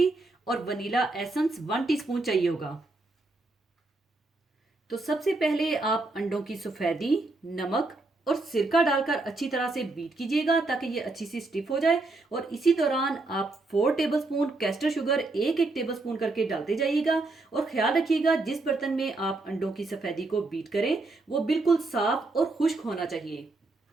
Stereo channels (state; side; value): quieter; left; 3.2 dB